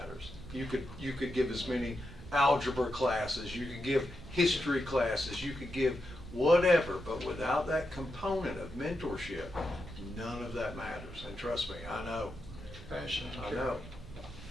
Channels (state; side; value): noise; right; rumble, 15 dB below the sound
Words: You could give as many algebra classes, you could give history classes, you could give whatever, but without that component of mentorship, none of that matters. And trust me, I know. passion and I care. know.